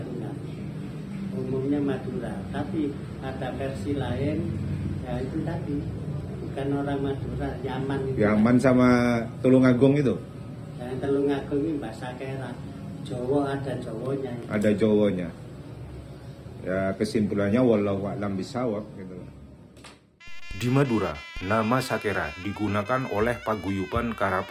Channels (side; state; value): both; identical; correlation 1.00